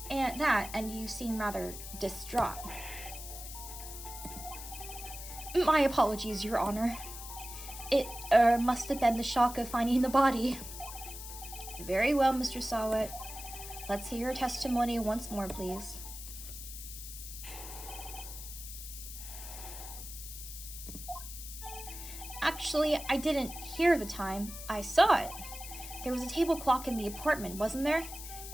And you seem rather distraught. My apologies, Your Honor. It, must have been the shock of finding the body. Very well, Mr. Sawat. Let's hear your testimony once more, please. Actually, I didn't hear the time. I saw it. There was a table clock in the apartment, wasn't there?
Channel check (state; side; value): noise; left; hiss, 11 dB below the sound